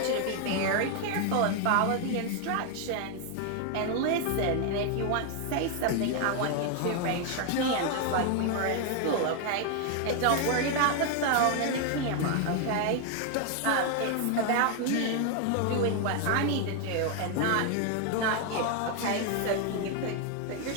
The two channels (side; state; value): both; different; correlation 0.00